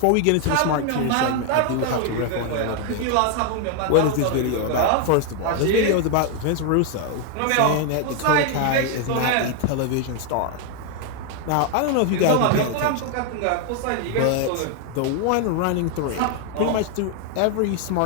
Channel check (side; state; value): both; different; correlation 0.01